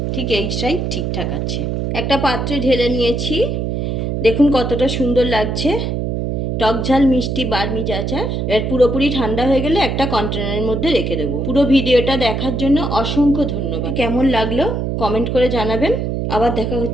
ঠিক এইটাই ঠিকঠাক আছে। একটা পাত্রে ঢেলে নিয়েছি, দেখুন কতটা সুন্দর লাগছে। টক ঝাল মিষ্টি বার্মিজ আচার। এর পুরোপুরি ঠান্ডা হয়ে গেলে একটা কন্টেনারের মধ্যে রেখে দেবো। পুরো ভিডিওটা দেখার জন্য অসংখ্য ধন্যবাদ। কেমন লাগলো কমেন্ট করে জানাবেন। আবার দেখা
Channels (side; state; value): right; noise; hum, 1 dB below the sound